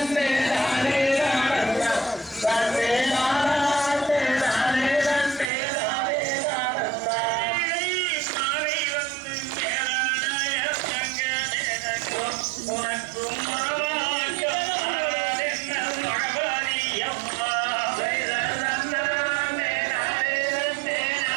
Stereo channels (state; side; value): drops out; left; at 5.5 s